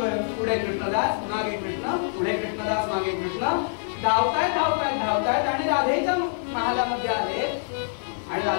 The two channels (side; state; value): right; silent; 62 dB below the other